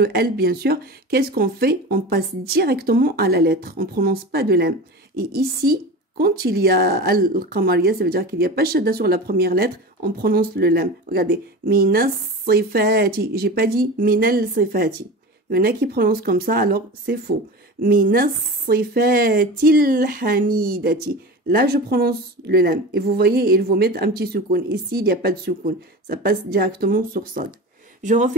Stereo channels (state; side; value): normal; both; correlation 0.30